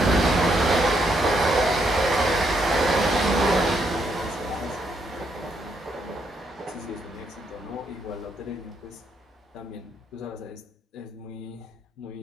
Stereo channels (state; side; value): normal; both; correlation 0.75